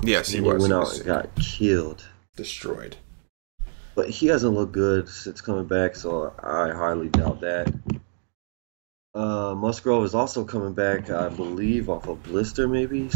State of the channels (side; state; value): left; silent; 61 dB below the other